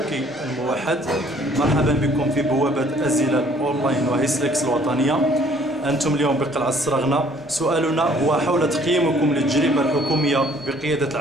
الموحد، مرحبا بكم في بوابة أزيلة أونلاين وهيسلكس الوطنية. أنتم اليوم بقلعة السرغنة. سؤالنا هو حول تقييمكم للتجربة الحكومية بقيادة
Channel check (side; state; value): both; normal; correlation 0.59